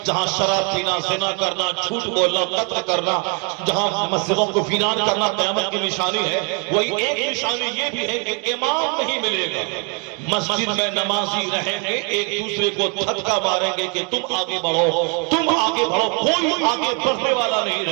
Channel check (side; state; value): left; quieter; 36.0 dB